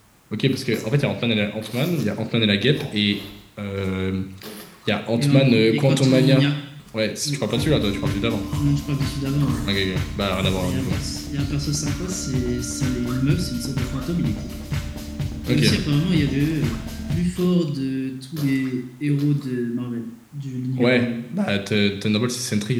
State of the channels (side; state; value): both; identical; correlation 1.00